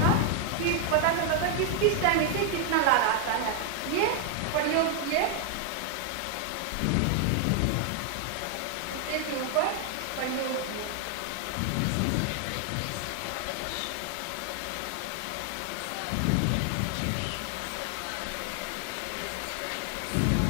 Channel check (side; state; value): both; different; correlation 0.00